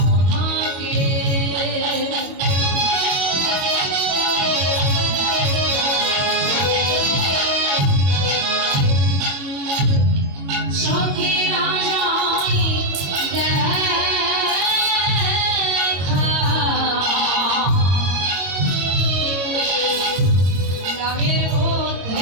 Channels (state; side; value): late; left; 22 ms